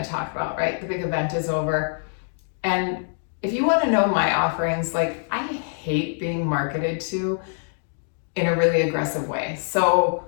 to talk about, right? The big event is over. And if you want to know my offerings, like, I hate being marketed to in a really aggressive way. So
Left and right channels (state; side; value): silent; right; digital silence